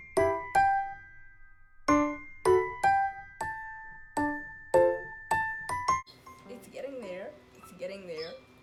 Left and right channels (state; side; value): identical; both; correlation 1.00